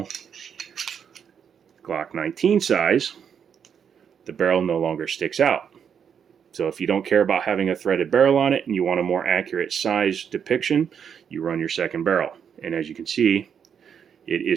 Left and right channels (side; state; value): left; quieter; 7.6 dB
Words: Glock 19 size. The barrel no longer sticks out. So if you don't care about having a threaded barrel on it and you want a more accurate size depiction, you run your second barrel. And as you can see, it